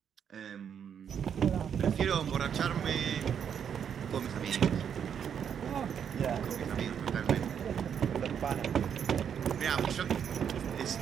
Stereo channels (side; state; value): left; quieter; 8.1 dB